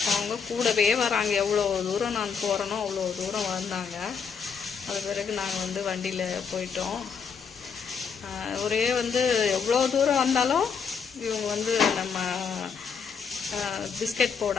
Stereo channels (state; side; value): quieter; right; 6.2 dB